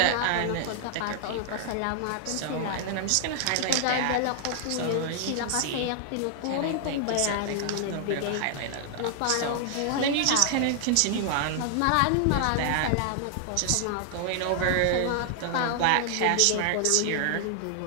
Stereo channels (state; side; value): different; both; correlation 0.00